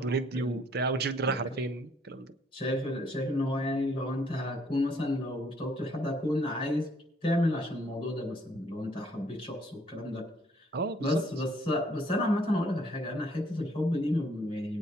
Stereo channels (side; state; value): both; normal; correlation 0.65